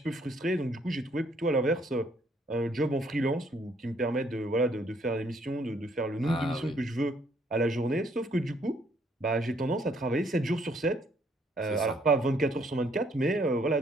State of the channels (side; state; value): both; normal; correlation 0.67